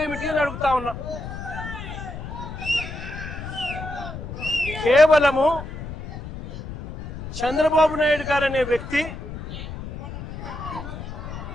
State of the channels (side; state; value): left; noise; rumble, 9 dB below the sound